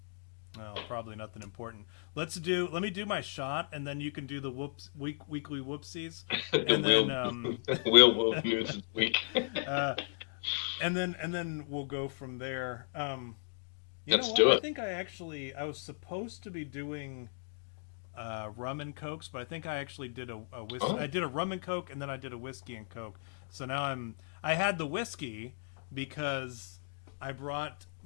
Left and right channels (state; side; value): silent; right; digital silence